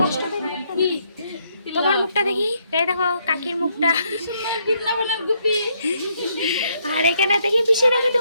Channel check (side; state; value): both; inverted; correlation -0.74